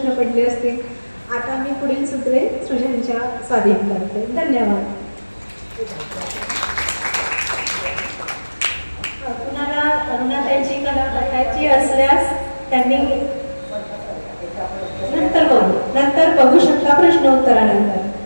पडले असतील. आता मी पुढील सूत्रे सृजनच्या स्वाधीन करते. धन्यवाद. कुणाला अरुणाताईंची कला बघायची असल्यास त्यांनी नंतर बघू शकता प्रश्नोत्तरानंतर.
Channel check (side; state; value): both; inverted; correlation -1.00